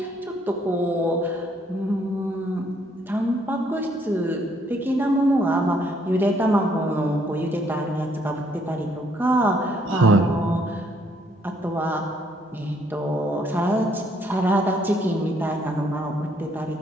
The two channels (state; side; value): normal; both; correlation 0.68